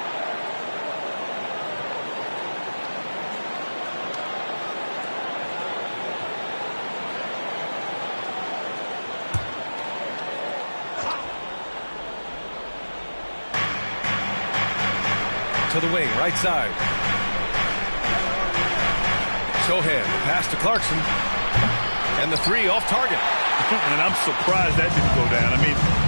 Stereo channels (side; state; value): both; inverted; correlation -1.00